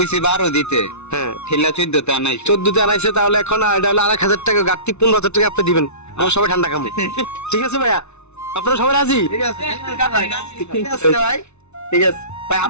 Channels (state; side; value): late; right; 0.81 ms